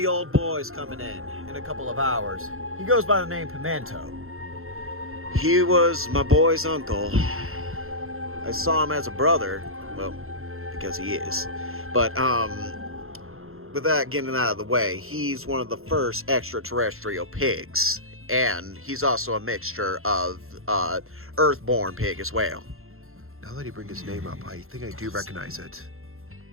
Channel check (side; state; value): left; late; 0.62 ms